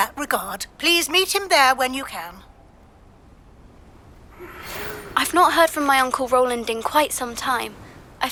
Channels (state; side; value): identical; both; correlation 1.00